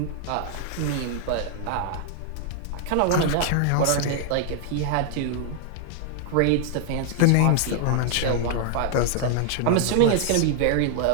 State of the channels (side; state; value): both; different; correlation 0.00